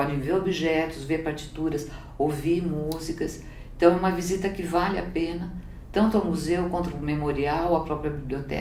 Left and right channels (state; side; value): identical; both; correlation 1.00